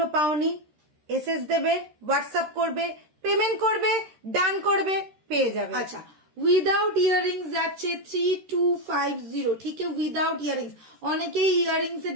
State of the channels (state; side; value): late; left; 13 ms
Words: পাওনি এসএস দেবে, হোয়াটসঅ্যাপ করবে, পেমেন্ট করবে, ডান করবে, পেয়ে যাবে। আচ্ছা উইদাউট ইয়াররিংস যাচ্ছে 3250, ঠিক আছে? উইদাউট ইয়াররিংস, অনেকেই ইয়াররিংস এর